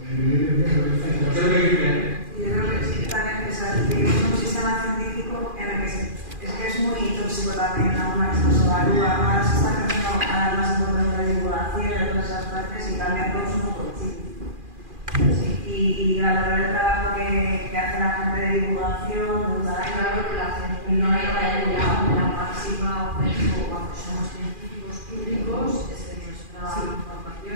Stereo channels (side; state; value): left; late; 2.4 ms